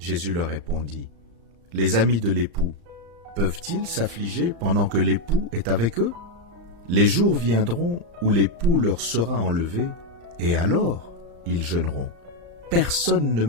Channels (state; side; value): late; left; 35 ms